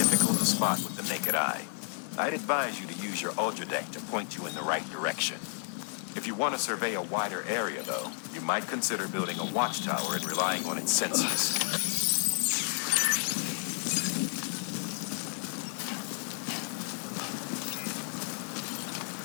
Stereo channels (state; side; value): silent; right; 57 dB below the other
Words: to spot with the naked eye. I'd advise you to use your ultra deck to point you in the right direction. If you want to survey a wider area, though, you might consider building a watchtower and relying on its sensors.